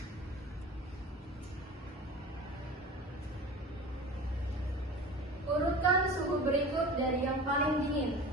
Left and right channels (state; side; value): normal; both; correlation 0.36